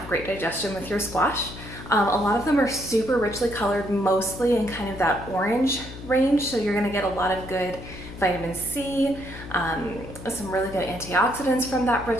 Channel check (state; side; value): noise; left; hum, 13 dB below the sound